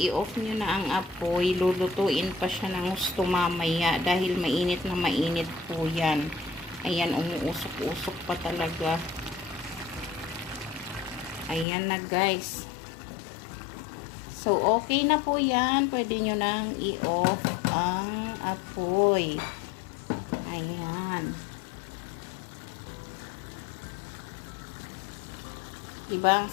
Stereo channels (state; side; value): drops out; right; at 11.7 s